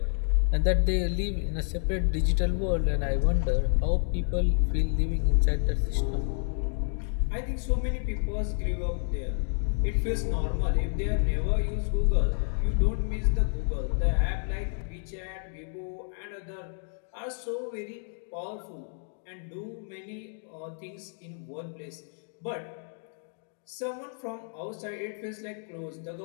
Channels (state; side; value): silent; right; 58 dB below the other